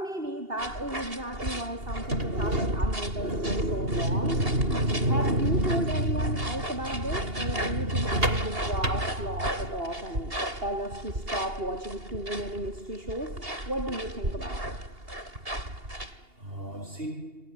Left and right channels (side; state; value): left; late; 2.8 ms